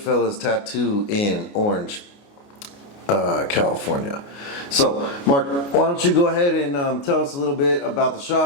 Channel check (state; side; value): late; right; 29 ms